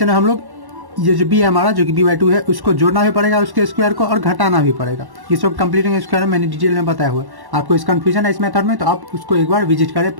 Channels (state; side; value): late; left; 1.1 ms